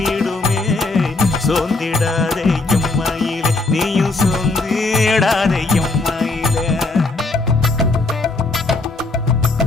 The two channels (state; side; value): quieter; right; 3.2 dB